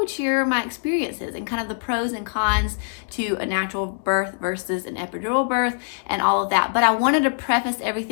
share my experiences and kind of the pros and cons to a natural birth versus an epidural birth and all of that. But I wanted to preface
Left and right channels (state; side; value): silent; right; digital silence